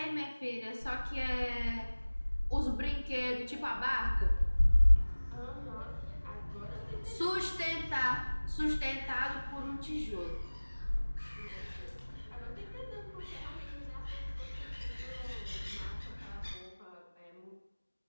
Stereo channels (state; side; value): inverted; both; correlation -1.00